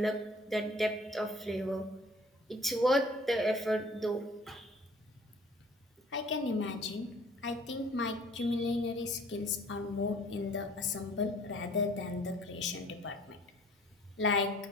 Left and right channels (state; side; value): normal; both; correlation 0.53